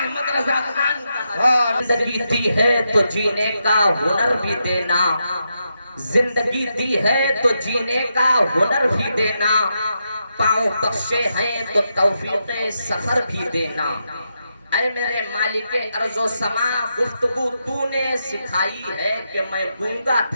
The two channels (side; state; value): both; inverted; correlation -0.84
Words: رضا خان زندگی دی ہے تو جینے کا ہنر بھی دینا، زندگی دی ہے تو جینے کا ہنر بھی دینا، پاؤں بخشے ہیں تو توفیق سفر بھی دینا۔ اے میرے مالک ارض و سما، گفتگو تو نے سکھائی ہے کہ میں گونگا